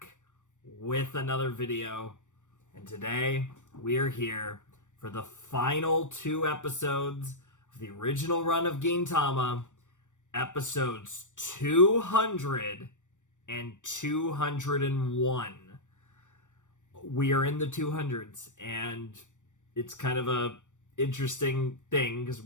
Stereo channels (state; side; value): late; right; 0.85 ms